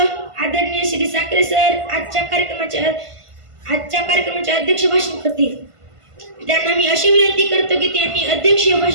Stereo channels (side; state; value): left; late; 1.5 ms